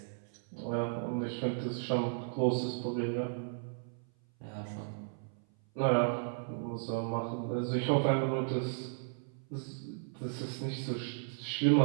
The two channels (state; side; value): silent; left; 55 dB below the other